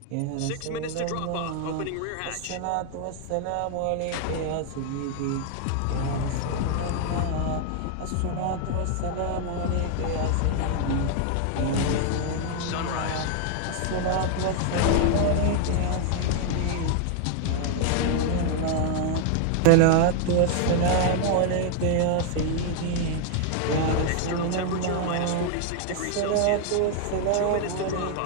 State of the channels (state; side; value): different; both; correlation 0.00